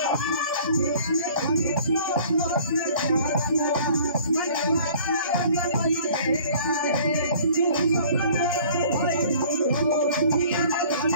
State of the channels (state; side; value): inverted; both; correlation -0.51